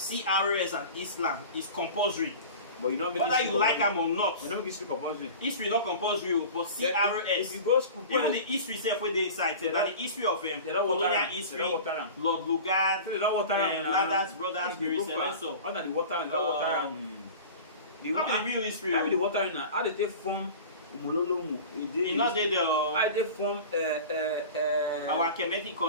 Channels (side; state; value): both; inverted; correlation -0.36